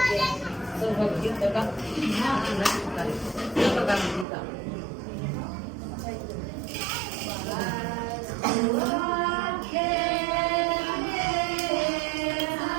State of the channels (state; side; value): drops out; left; at 4.2 s